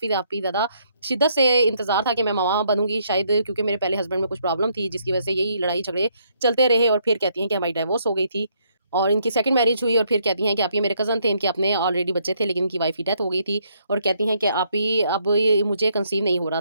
ज़्यादा शिद्दत से इंतज़ार था कि मैं माँ बनूँगी शायद क्योंकि मेरे पहले हस्बैंड में कुछ प्रॉब्लम थी जिसकी वजह से यही लड़ाई-झगड़े चलते रहे और फिर कहती हैं कि हमारी डिवोर्स हो गई थी। और इनकी सेकंड मैरिज हुई और फिर कहती हैं कि आप ये मेरे कज़न थे, इनके अपने ऑलरेडी बच्चे थे लेकिन इनकी वाइफ़ की डेथ हो गई थी और कहती हैं कि आप ही अब ये मुझे कंसीव नहीं हो रहा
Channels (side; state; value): both; inverted; correlation -0.71